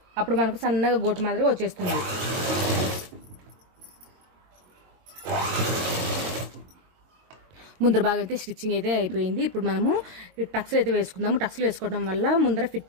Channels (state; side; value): late; left; 22 ms